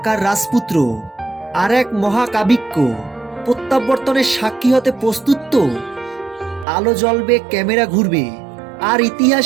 রাজপুত্র আর এক মহাকাব্যিক প্রত্যাবর্তনের সাক্ষী হতে প্রস্তুত তো? আলো জ্বলবে, ক্যামেরা ঘুরবে, আর ইতিহাস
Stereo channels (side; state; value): left; drops out; at 6.7 s